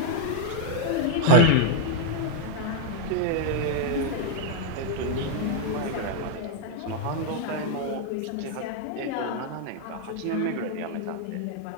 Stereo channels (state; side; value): different; both; correlation 0.00